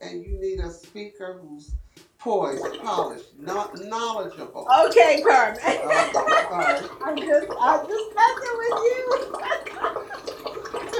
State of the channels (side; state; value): both; identical; correlation 1.00